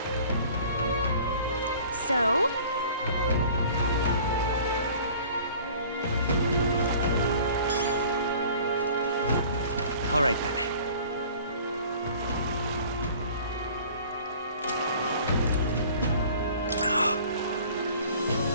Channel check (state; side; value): inverted; both; correlation -0.48